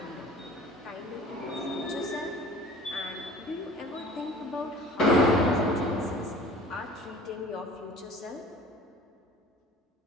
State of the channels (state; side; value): normal; both; correlation 0.45